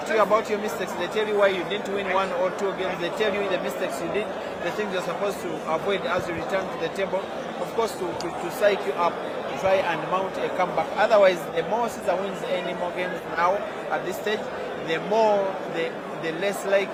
to you about your mistakes. They tell you why you didn't win 1 or 2 games. They tell you the mistakes you did, the things you're supposed to avoid as you return to the table. Of course, to psych you up, to try and mount a comeback. Otherwise, the more Caesar wins any more games now at this stage, the less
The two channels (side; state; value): both; identical; correlation 1.00